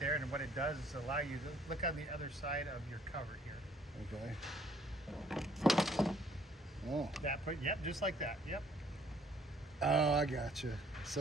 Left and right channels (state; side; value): normal; both; correlation 0.60